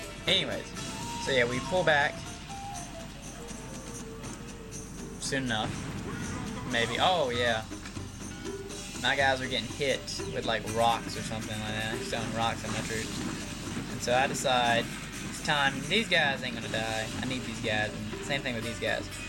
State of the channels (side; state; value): both; identical; correlation 1.00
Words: Anyways, so yeah, we pull back soon enough. Maybe. Oh yeah, my guys are getting hit with like rocks or something like that, throwing rocks at my troops. And so I decide it's time. These guys ain't gonna die. I need these guys. And same thing with these guys.